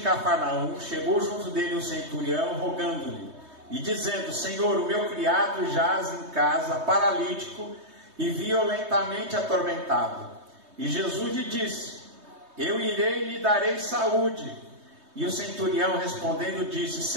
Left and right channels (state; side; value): late; left; 3.2 ms